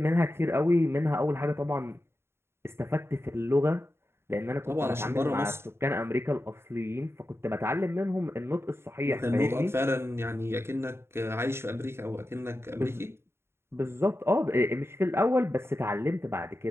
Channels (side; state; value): left; late; 0.12 ms